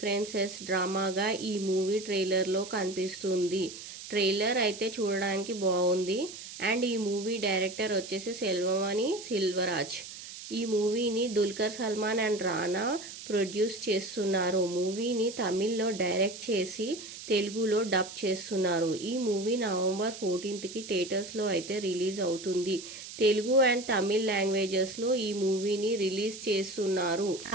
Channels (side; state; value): right; noise; hiss, 12 dB below the sound